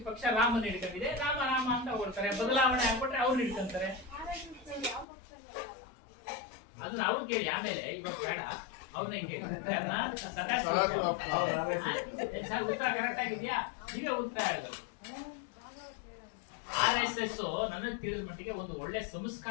ಪಕ್ಷ ರಾಮನ ಹಿಡ್ಕೊಂಡಿದೆ, ರಾಮ ರಾಮ ಅಂತ ಹೊಗಳ್ತಾರೆ, ಬದಲಾವಣೆ ಆಗ್ಬಿಟ್ರೆ ಅವ್ರು ಹಿಡ್ಕೊಂತಾರೆ. ಅದನ್ನ ಅವ್ರು ಕೇಳಿ, ಆಮೇಲೆ ಇವಾಗ ಬೇಡ ಅವ್ರನ್ನ ಕೇಳಿ. ಸರ್ ಉತ್ತರ ಕರೆಕ್ಟ್ ಆಗಿದ್ಯಾ? ನೀವೇ ಉತ್ತರ ಹೇಳಿದ್ರು. RSS ನನಗೆ ತಿಳಿದ ಮಟ್ಟಿಗೆ ಒಂದು ಒಳ್ಳೆ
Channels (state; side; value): drops out; right; at 5.1 s